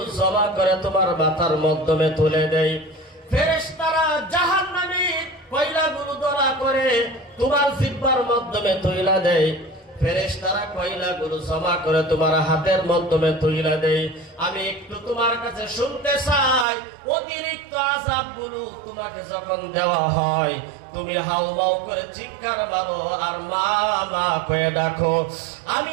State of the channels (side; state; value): left; drops out; at 16.7 s